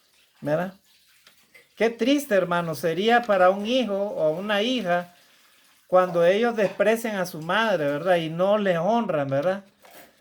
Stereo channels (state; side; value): identical; both; correlation 1.00